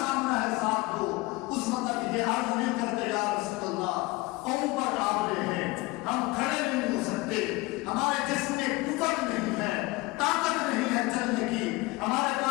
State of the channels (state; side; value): quieter; right; 22.2 dB